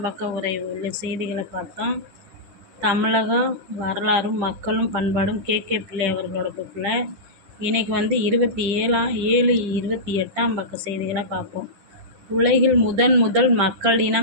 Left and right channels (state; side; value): late; left; 10 ms